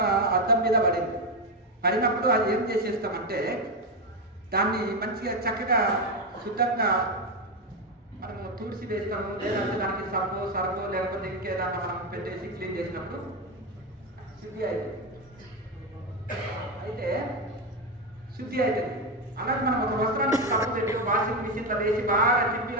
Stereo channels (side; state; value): both; normal; correlation 0.10